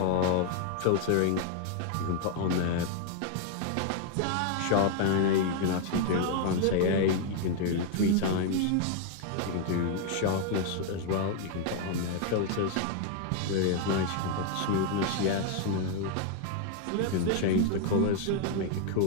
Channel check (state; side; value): different; both; correlation 0.00